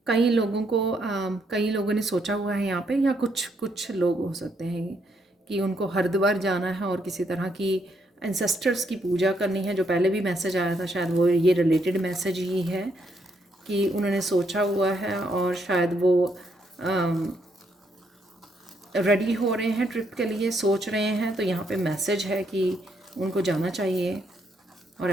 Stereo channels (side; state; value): both; normal; correlation 0.74